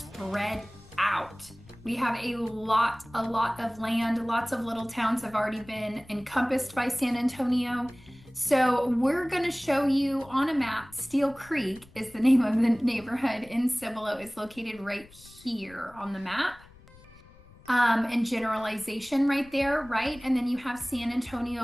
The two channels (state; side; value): noise; left; rumble, 24 dB below the sound